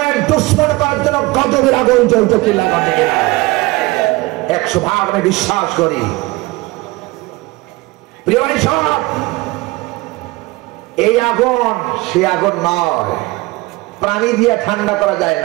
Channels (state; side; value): quieter; left; 21.7 dB